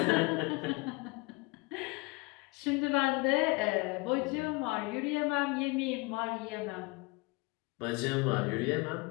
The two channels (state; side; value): quieter; right; 26.4 dB